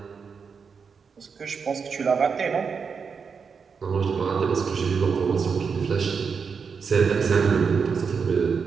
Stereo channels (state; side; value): quieter; left; 5.8 dB